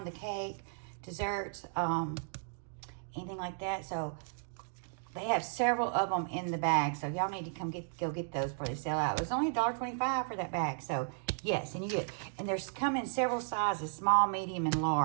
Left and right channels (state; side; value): silent; left; digital silence